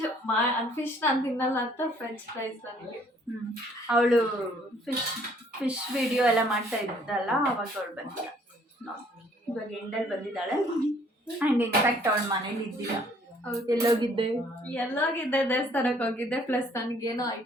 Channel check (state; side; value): normal; both; correlation 0.61